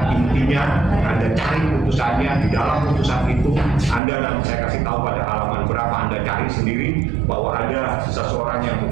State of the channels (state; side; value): drops out; left; at 4.0 s